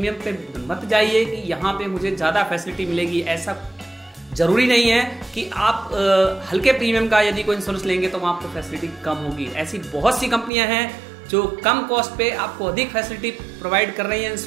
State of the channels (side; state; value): left; drops out; at 10.5 s